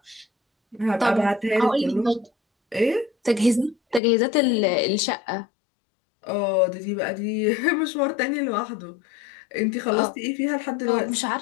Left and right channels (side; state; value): right; drops out; at 4.0 s